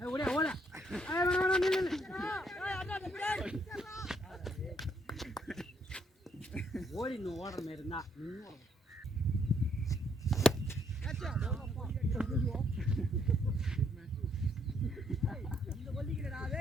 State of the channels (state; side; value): normal; both; correlation 0.71